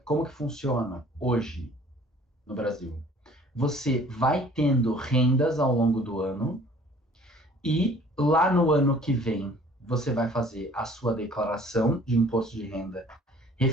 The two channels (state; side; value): normal; both; correlation 0.53